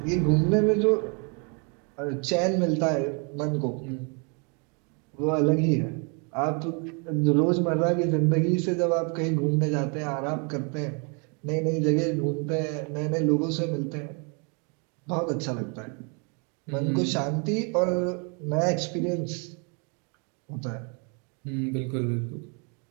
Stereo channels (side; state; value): left; quieter; 35.7 dB